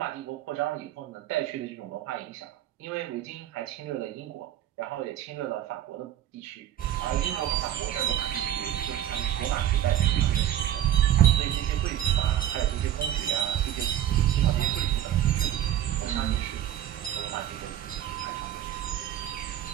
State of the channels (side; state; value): left; quieter; 11.8 dB